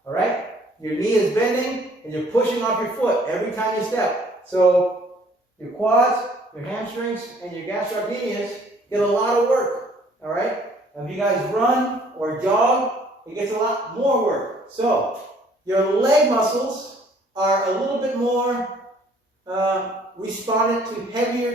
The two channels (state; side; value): normal; both; correlation 0.59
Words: all right, your knee is bending and you're pushing off your foot every time you step. So your quads, your hamstrings, and your gastrocnemius get a lot of work, all right? If you guys run or jog, it gets a lot more work. So your leg muscles are a little bit more respondent to